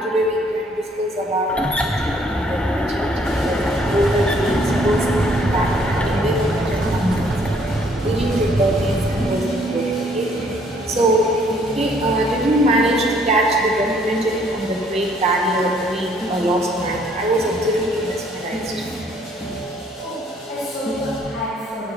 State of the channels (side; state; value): both; normal; correlation 0.64